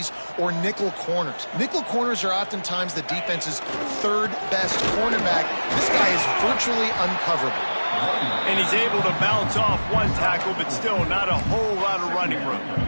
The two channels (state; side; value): inverted; both; correlation -1.00